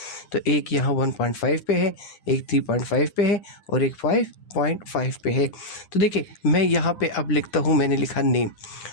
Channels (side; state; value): right; late; 9.7 ms